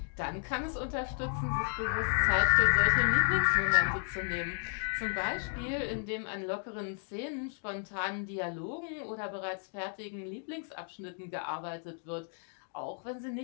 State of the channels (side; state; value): right; silent; 56 dB below the other